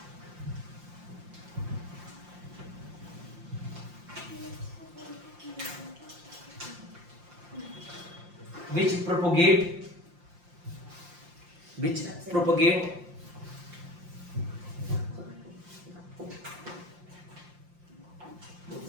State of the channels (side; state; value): left; late; 5.7 ms